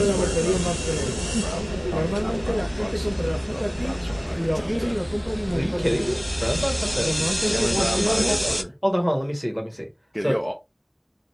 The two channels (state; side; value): identical; both; correlation 1.00